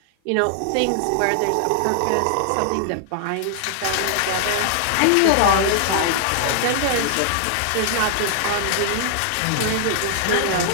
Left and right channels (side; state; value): both; different; correlation -0.01